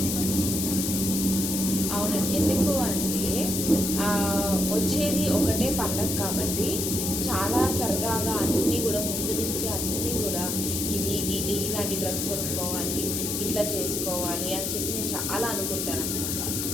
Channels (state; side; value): noise; left; hiss, 1 dB below the sound